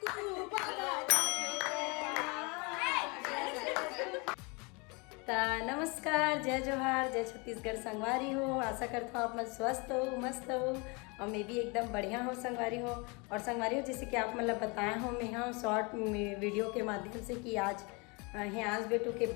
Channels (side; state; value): right; quieter; 29.6 dB